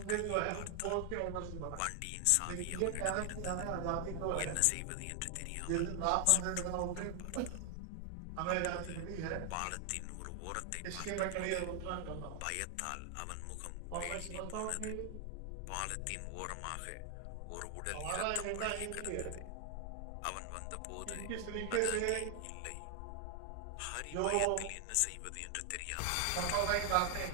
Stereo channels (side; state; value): both; different; correlation 0.00